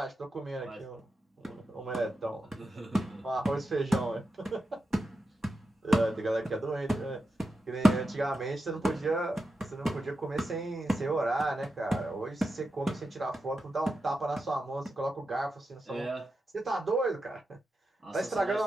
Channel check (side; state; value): both; normal; correlation 0.89